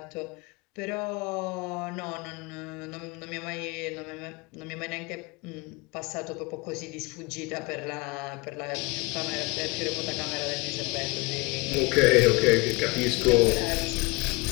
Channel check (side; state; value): right; quieter; 25.9 dB